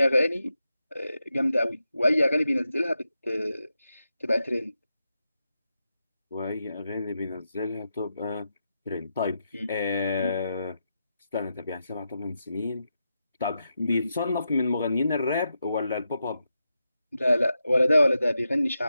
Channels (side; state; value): both; inverted; correlation -0.87